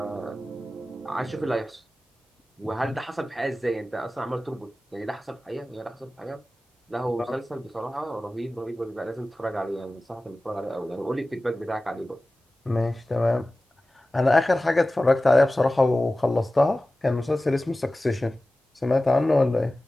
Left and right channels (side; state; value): both; normal; correlation 0.96